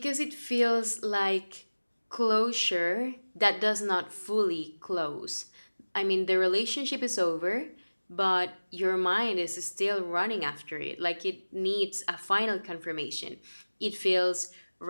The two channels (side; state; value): both; inverted; correlation -1.00